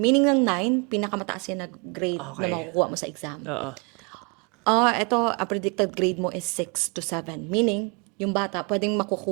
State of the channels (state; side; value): quieter; left; 33.2 dB